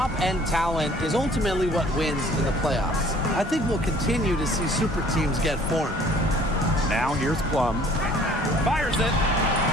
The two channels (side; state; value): both; normal; correlation 0.55